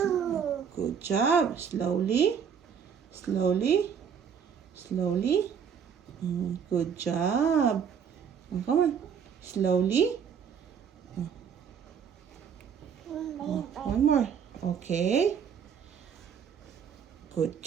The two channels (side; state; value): left; quieter; 7.4 dB